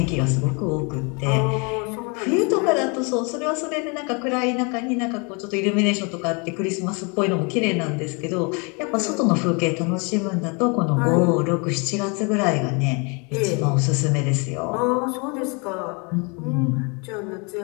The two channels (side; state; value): right; quieter; 32.4 dB